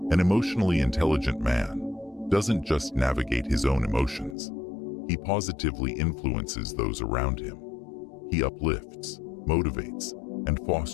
An emotionally intelligent man doesn't just navigate his own emotions, he positively influences those around him. He uplifts, motivates, and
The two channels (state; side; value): drops out; right; at 4.4 s